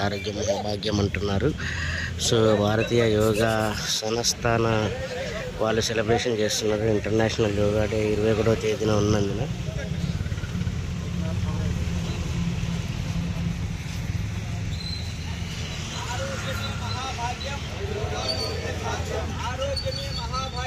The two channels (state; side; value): identical; both; correlation 1.00